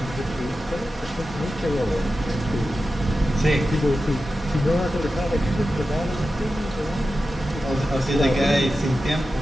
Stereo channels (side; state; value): both; normal; correlation 0.92